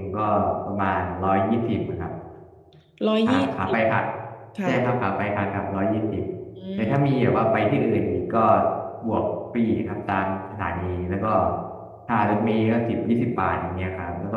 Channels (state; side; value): identical; both; correlation 1.00